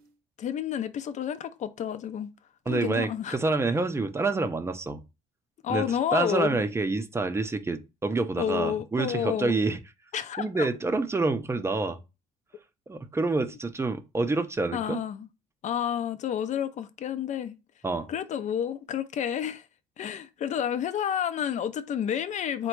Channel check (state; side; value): normal; both; correlation 0.55